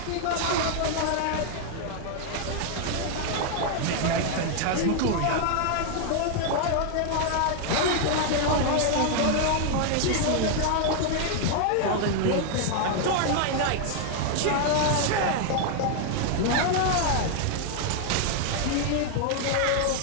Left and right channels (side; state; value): both; different; correlation 0.00